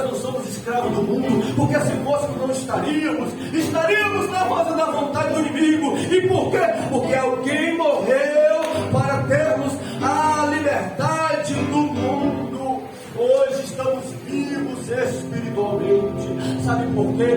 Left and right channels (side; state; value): both; identical; correlation 1.00